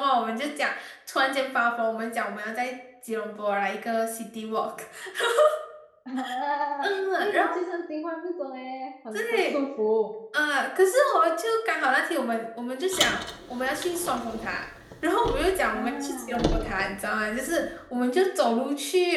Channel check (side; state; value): both; identical; correlation 1.00